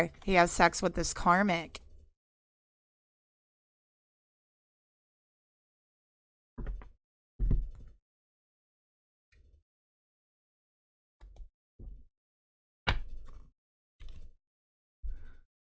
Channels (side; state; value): both; identical; correlation 1.00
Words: he has sex with this karmic.